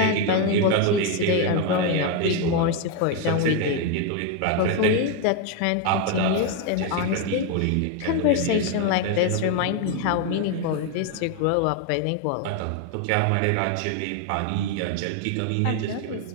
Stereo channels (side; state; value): both; different; correlation 0.01